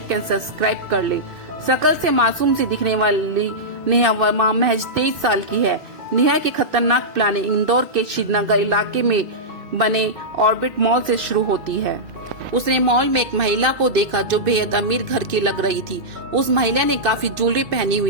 एंड सब्सक्राइब कर ले। शकल से मासूम सी दिखने वाली नेहा वर्मा महज 23 साल की है। नेहा की खतरनाक प्लानिंग इंदौर के श्रीनगर इलाके में बने ऑर्बिट मॉल से शुरू होती है। उसने मॉल में एक महिला को देखा जो बेहद अमीर घर की लग रही थी। उस महिला ने काफी ज्वेलरी पहनी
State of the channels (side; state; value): left; late; 2.6 ms